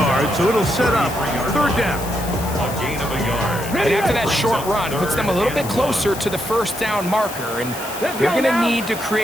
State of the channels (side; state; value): left; noise; hiss, 12 dB below the sound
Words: so it'll set up 3rd down. A gain of a yard. And after that short run, puts them a little bit closer to the 1st down marker, and they're going to need to